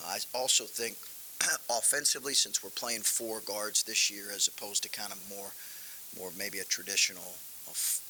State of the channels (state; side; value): identical; both; correlation 1.00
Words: also think offensively, since we're playing four guards this year as opposed to kind of more maybe a traditional